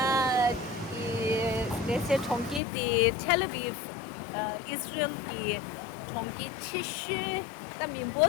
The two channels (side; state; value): right; drops out; at 2.6 s